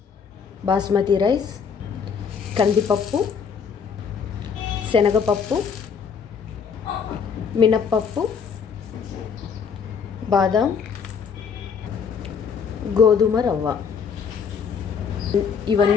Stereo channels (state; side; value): quieter; right; 6.4 dB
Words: బాస్మతి రైస్, కందిపప్పు, శనగపప్పు, మినప్పప్పు, బాదాం, గోధుమ రవ్వ